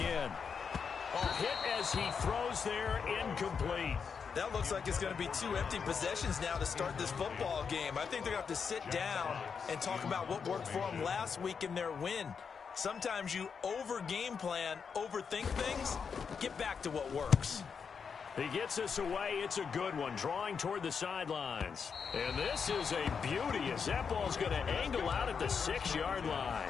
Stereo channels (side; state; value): right; quieter; 6.1 dB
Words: Hit as he throws there, incomplete. That looks like it's going to be 2 empty possessions now to start this football game. I think they're going to have to sit down and talk about what worked for them last week in their win. Sometimes you over-game plan, overthink things, get back to what works. He gets us away. It's a good one, drawing toward the sidelines. And this is a beauty as that ball's going to angle out at the 6-yard